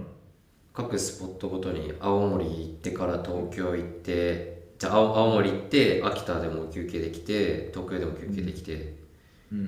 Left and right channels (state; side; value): identical; both; correlation 1.00